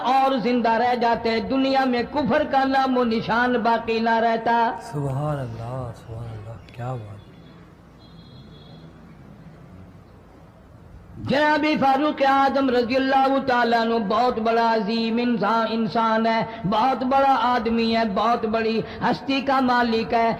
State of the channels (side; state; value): both; identical; correlation 1.00